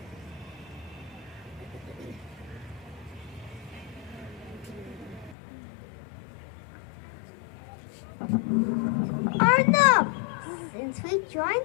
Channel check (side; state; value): right; drops out; at 5.4 s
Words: Arnab, since we